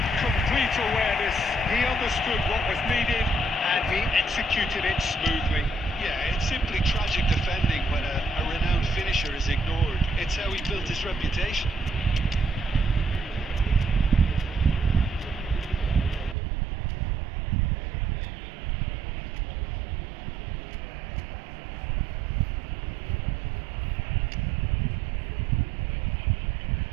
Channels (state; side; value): drops out; left; at 16.4 s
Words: Complete awareness. He understood what was needed and he executed it smoothly. Yeah, it's simply tragic defending when a renowned finisher is ignored. It's how he built his reputation.